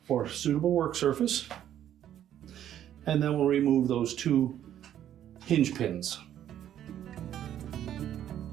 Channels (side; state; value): left; quieter; 10.9 dB